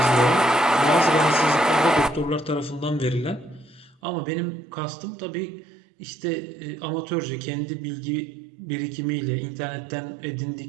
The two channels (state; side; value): drops out; left; at 4.0 s